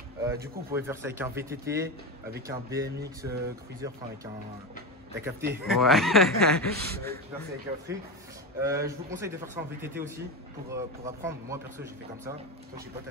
Du coup, vous pouvez faire ça avec un VTT, avec un BMX Cruiser, enfin avec un... T'as capté? Ouais. Tu peux faire ça avec un truc. Je vous conseille de faire ça en VTT aussi pour apprendre. Moi perso, j'ai fait comme ça. Toi, je sais pas,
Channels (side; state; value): both; normal; correlation 0.19